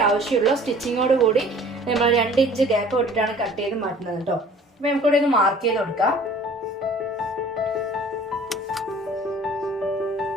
ആവശ്യമുള്ളൂ. സ്റ്റിച്ചിങ്ങോട് കൂടി നമ്മൾ 2 ഇഞ്ച് ഗ്യാപ്പ് ഇട്ടിട്ടാണ് കട്ട് ചെയ്ത് മാറ്റുന്നത് കേട്ടോ. അപ്പൊ നമുക്കിവിടെ ഒന്ന് മാർക്ക് ചെയ്ത് കൊടുക്കാം.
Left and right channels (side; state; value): both; normal; correlation 0.50